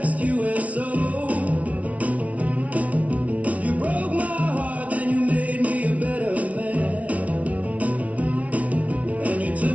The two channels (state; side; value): late; left; 0.067 ms